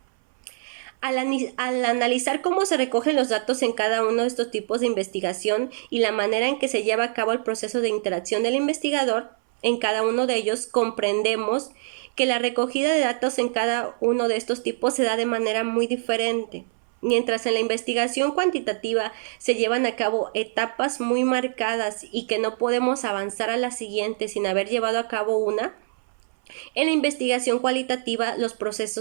Al analizar cómo se recogen los datos en cada uno de estos tipos de investigación y la manera en que se lleva a cabo el proceso de interacción del investigador, en cada uno de ellos comprendemos que la recogida de datos en cada uno de estos tipos se da de manera muy diferente. Mientras en la investigación cuantitativa se llevan a cabo etapas muy marcadas y que no podemos avanzar a la siguiente sin haber llevado a cabo una, en la investigación cualitativa los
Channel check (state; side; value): silent; left; 59 dB below the other